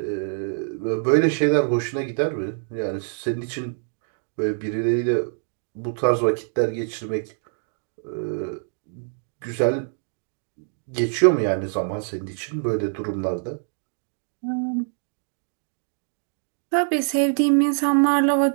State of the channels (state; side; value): silent; left; digital silence